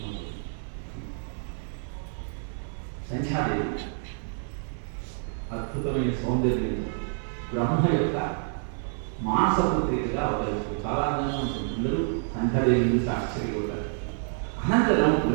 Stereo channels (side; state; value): left; silent; 59 dB below the other